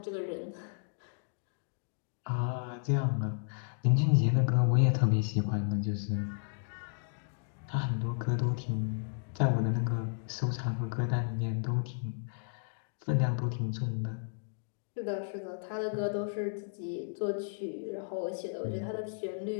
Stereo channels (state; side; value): silent; right; digital silence